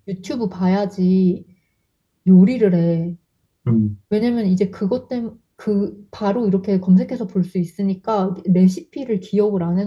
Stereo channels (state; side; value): identical; both; correlation 1.00